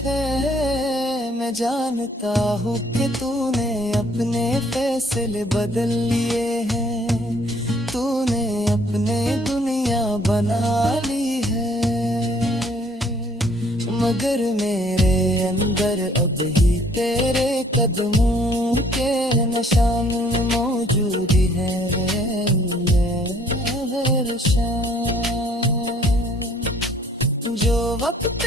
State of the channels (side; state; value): both; normal; correlation 0.61